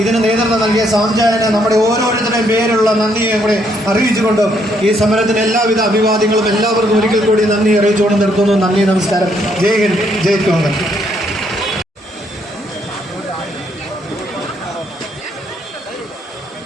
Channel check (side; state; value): both; normal; correlation 0.71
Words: ഇതിന് നേതൃത്വം നൽകിയ സാംജാനെ നമ്മുടെ ഓരോരുത്തരുടെയും പേരുള്ള നന്ദിയെ കൂടെ അറിയിച്ചുകൊണ്ടും ഈ സമരത്തിന് എല്ലാവിധ അഭിവാദ്യങ്ങളും എല്ലാവർക്കും ഒരിക്കൽ കൂടി നന്ദി അറിയിച്ചുകൊണ്ട് നിർത്തുന്നു. നന്ദി, നമസ്കാരം. ജയ് ഹിന്ദ്, ജയ് കോൺഗ്രസ്.